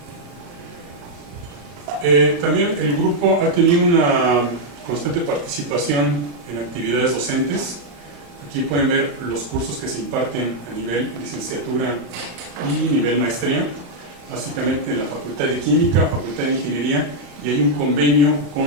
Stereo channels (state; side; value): late; left; 35 ms